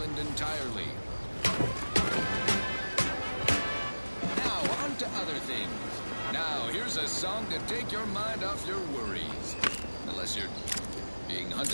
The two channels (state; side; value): inverted; both; correlation -1.00